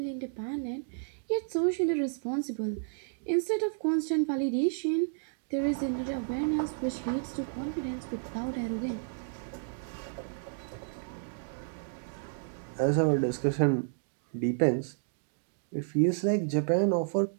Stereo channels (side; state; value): left; silent; digital silence